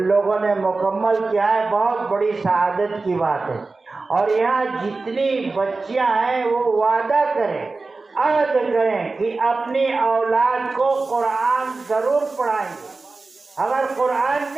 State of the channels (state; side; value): quieter; left; 3.7 dB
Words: لوگوں نے مکمل کیا ہے، بہت بڑی سعادت کی بات ہے۔ اور یہاں جتنی بچیاں ہیں وہ وعدہ کریں، عہد کریں کہ اپنی اولاد کو قرآن ضرور پڑھائیں گے۔ اگر قرآن